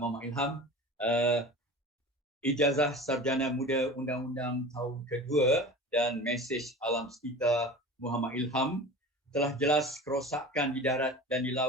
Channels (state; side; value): normal; both; correlation 0.35